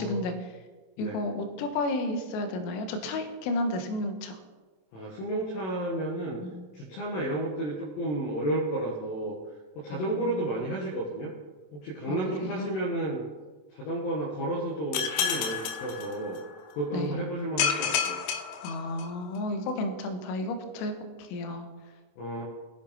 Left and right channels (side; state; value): right; late; 27 ms